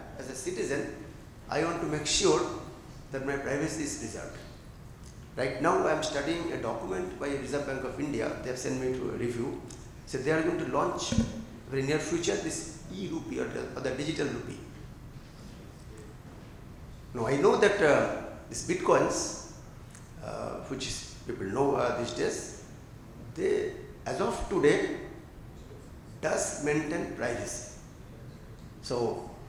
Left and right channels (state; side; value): identical; both; correlation 1.00